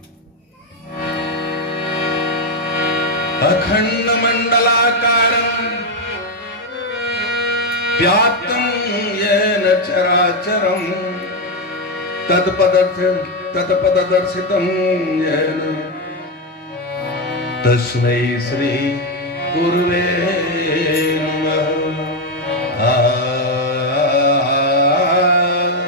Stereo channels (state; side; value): normal; both; correlation 0.06